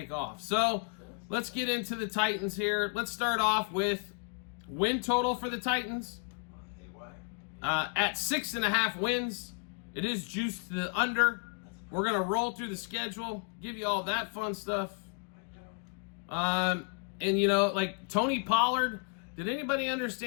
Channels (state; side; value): quieter; right; 36.5 dB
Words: off. So let's get into the Titans here. Let's start off with win total for the Titans. At 6.5 wins, it is juiced to the under. We're going to roll through the schedule, give you all that fun stuff. And, like Tony Pollard, did anybody